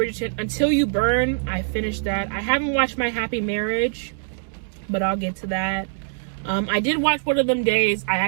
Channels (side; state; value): left; silent; 63 dB below the other